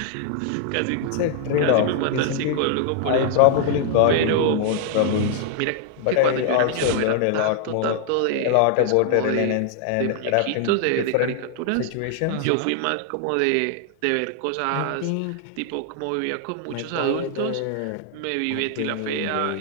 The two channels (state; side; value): different; both; correlation 0.00